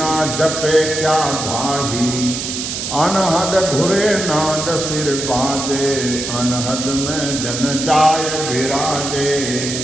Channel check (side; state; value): right; noise; hiss, 4 dB below the sound